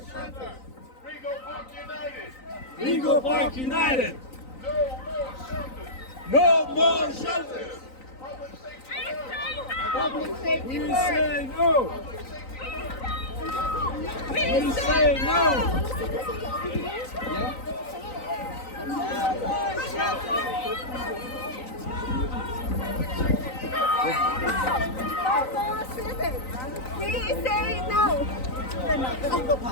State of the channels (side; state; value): right; late; 3.9 ms